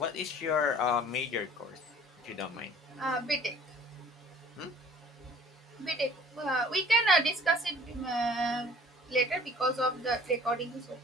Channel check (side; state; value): both; normal; correlation 0.51